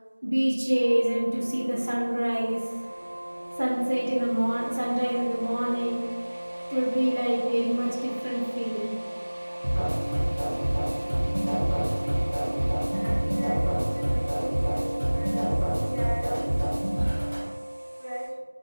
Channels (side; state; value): both; inverted; correlation -1.00